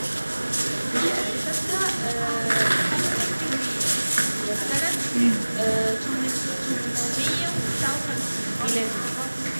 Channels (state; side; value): inverted; both; correlation -1.00